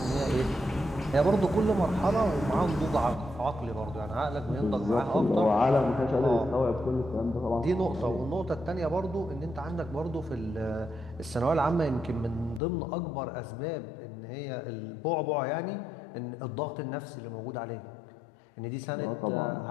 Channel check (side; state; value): right; drops out; at 12.6 s